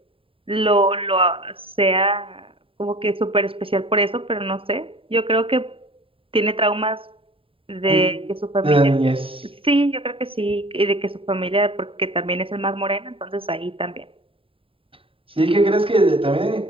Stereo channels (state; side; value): late; left; 0.26 ms